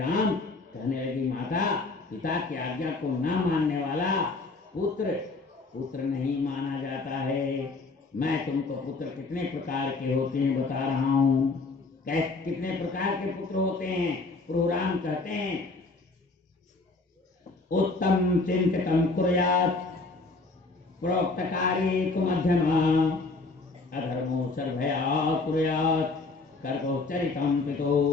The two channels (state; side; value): quieter; right; 3.6 dB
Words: कहने लगी, माता, पिता की आज्ञा को न मानने वाला पुत्र नहीं माना जाता है। मैं तुमको पुत्र कितने प्रकार के होते हैं बता रहा हूँ। कितने प्रकार के पुत्र होते हैं? प्रभु राम कहते हैं, उत्तम चिंतितम कुर्यात्, प्रोक्त कार्ये तु मध्यमा, अधर्मो सर्वया कुर्यात्, कर्को चरितम पितो।